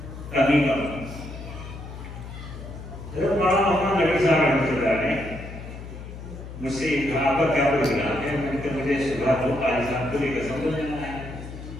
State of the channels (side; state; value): left; noise; hum, 12 dB below the sound